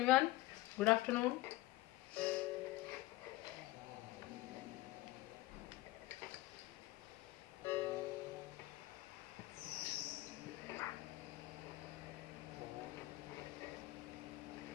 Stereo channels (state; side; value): quieter; right; 17.9 dB